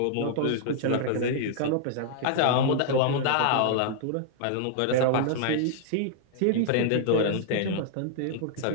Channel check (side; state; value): both; different; correlation -0.01